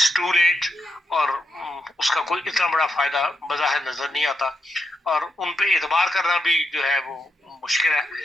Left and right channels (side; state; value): both; normal; correlation 0.83